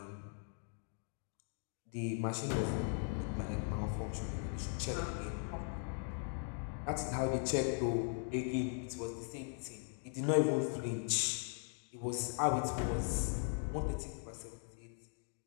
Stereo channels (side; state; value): right; silent; 51 dB below the other